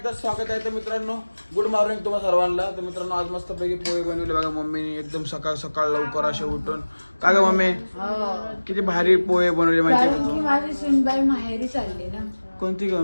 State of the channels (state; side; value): inverted; both; correlation -1.00